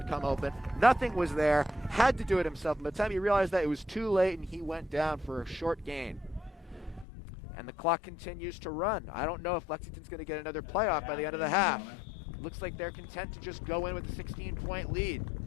come open. Nothing was there. Had to do it himself. By the time he realized that, it was too late, and he went down for a short gain. And the clock continues to run. I don't know if Lexington's going to get another playoff by the end of the half. Looks like they're content to just go in with a 16-point lead.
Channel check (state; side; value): drops out; right; at 7.1 s